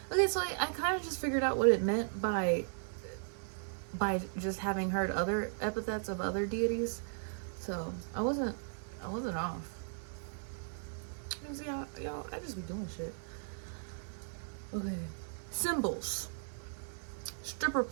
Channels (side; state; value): left; silent; 53 dB below the other